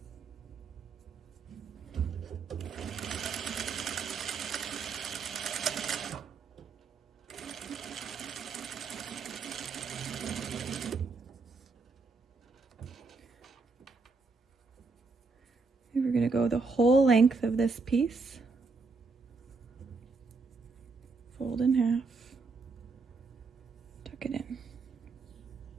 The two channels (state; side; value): quieter; left; 4.3 dB